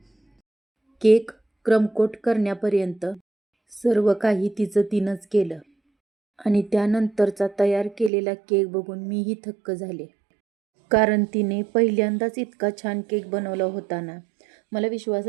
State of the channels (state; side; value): drops out; left; at 8.1 s